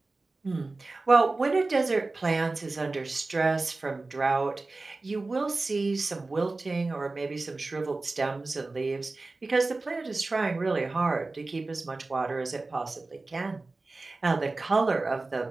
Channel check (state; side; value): quieter; left; 3.4 dB